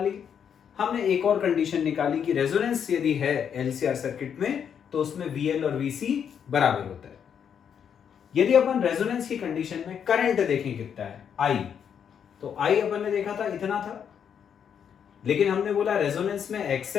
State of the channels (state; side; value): quieter; right; 7.9 dB